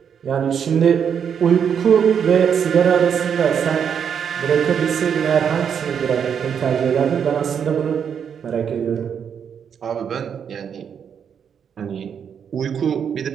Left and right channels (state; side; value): quieter; left; 7.6 dB